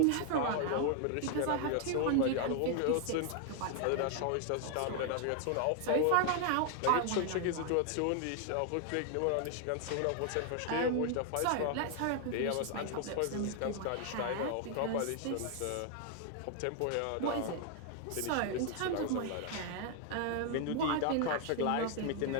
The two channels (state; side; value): different; both; correlation 0.00